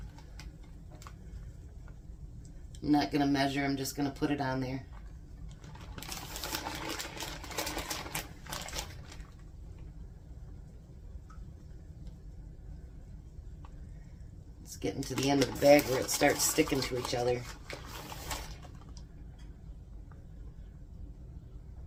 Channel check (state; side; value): identical; both; correlation 1.00